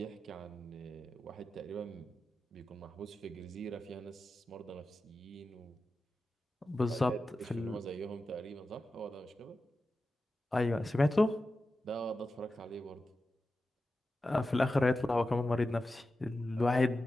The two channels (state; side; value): normal; both; correlation 0.92